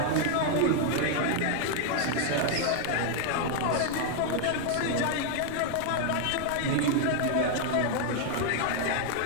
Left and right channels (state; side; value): different; both; correlation 0.00